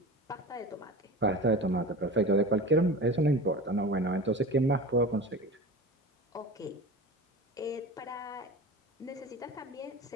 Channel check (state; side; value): normal; both; correlation 0.33